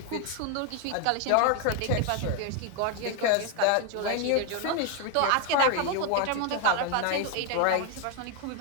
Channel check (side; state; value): both; different; correlation 0.01